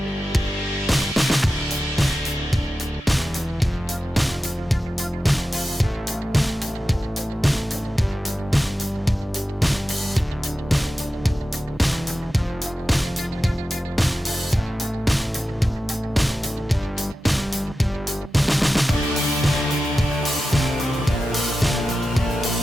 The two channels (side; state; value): both; normal; correlation 0.93